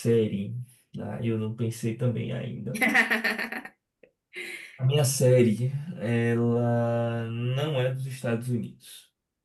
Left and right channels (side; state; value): both; identical; correlation 1.00